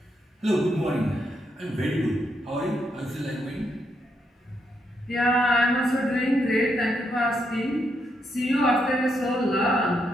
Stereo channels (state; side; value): normal; both; correlation 0.79